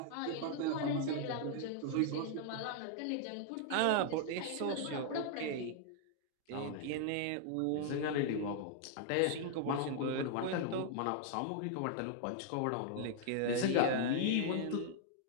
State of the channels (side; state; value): both; different; correlation 0.00